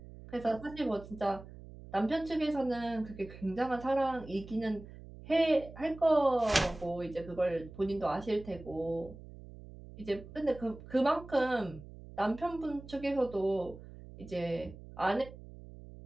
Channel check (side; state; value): right; noise; hum, 16 dB below the sound